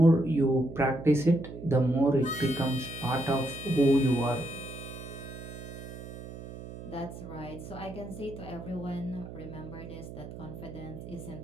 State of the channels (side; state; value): right; noise; hum, 12 dB below the sound